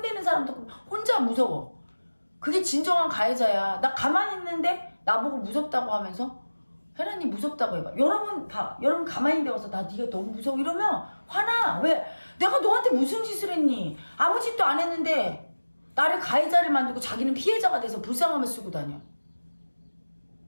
사람도 혼자 무서워. 그게 진정한 가해자야. 나 가만히 있는데 나보고 무섭다고 하면서 혜란이 무섭다고 해봐. 여러분 가만히 있는데 와서 나 네가 너무 무서워 이러면 화나. 왜? 내가 너한테 무슨 짓을 했니? 아무 짓도 안 했는데 나를 가해자를 만들고 자기는 피해자가 돼서 불쌍함을 쓰고 다녀.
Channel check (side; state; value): both; inverted; correlation -1.00